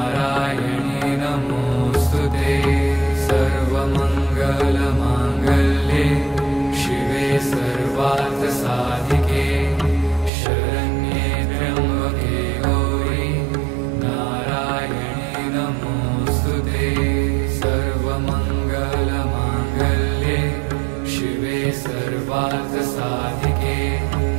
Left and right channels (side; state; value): left; drops out; at 10.3 s